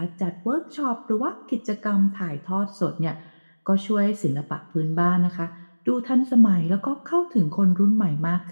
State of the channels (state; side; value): inverted; both; correlation -1.00